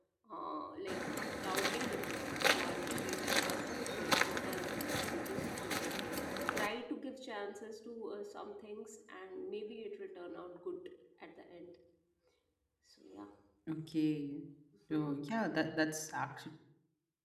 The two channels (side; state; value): both; identical; correlation 1.00